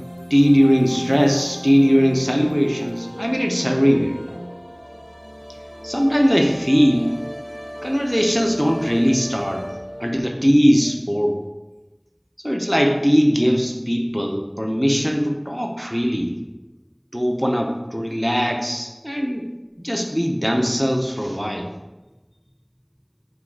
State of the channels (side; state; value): both; identical; correlation 1.00